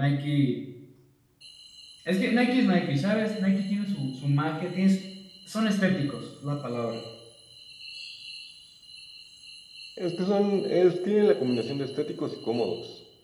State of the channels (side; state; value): both; identical; correlation 1.00